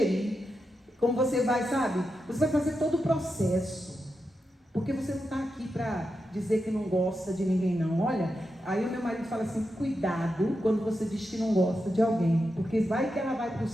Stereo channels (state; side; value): normal; both; correlation 0.88